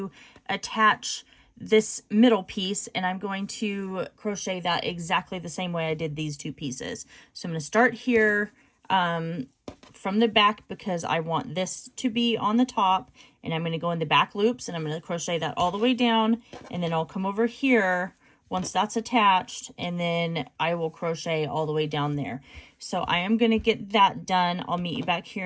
attach this middle piece, and I'm going to crochet that exactly the same way I did these two pieces. So I'm going to start here from the back because I want this to be on the top, and I'm going to go in the back loops and I'm going to crochet that all the way down, and then I'll come over here once that's attached, and then I will crochet all the way down there. So I am going to get that done. I'll meet you back here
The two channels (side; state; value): both; identical; correlation 1.00